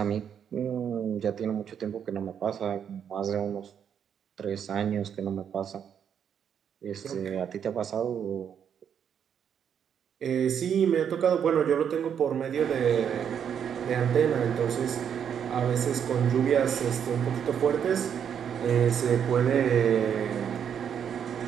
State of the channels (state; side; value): quieter; left; 8.2 dB